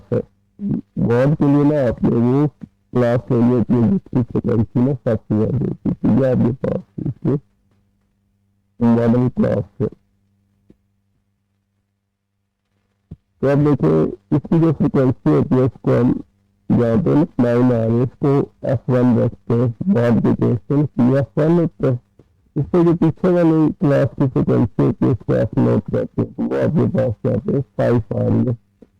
है। मॉड के लिए ना आपने वो क्लास ले ली होती है जिसकी फ्रिक्वेंसी ना सबसे ज्यादा होती है, तो ये आपके पास इसमें मॉडल क्लास है। तो अब देखिए इसकी जो फ्रिक्वेंसी होती है इसको हम जहाँ पे 9 आ रही है इसको F1 रखते हैं, मॉड के केस में F1 होता है। इससे जो पीछे वाली क्लास की फ्रिक्वेंसी होती है इसको F0 कहते हैं, तो वो आपके पास यहाँ पे 5 आ रही है।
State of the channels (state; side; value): identical; both; correlation 1.00